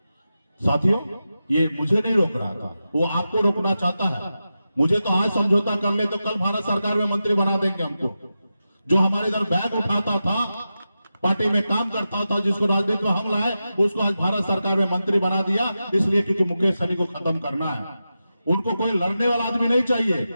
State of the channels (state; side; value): inverted; both; correlation -0.91